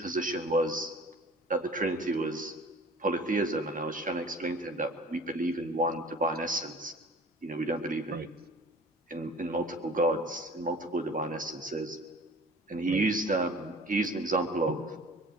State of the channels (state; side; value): normal; both; correlation 0.45